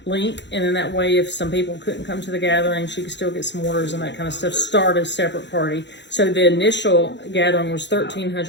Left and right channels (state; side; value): late; right; 0.52 ms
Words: link, and then that way, if some people couldn't come to the gathering, she could still get some orders and that kind of stuff. Start a separate party. So the initial gathering was